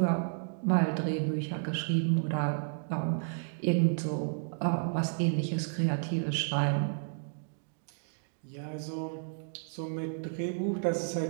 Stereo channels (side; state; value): left; silent; digital silence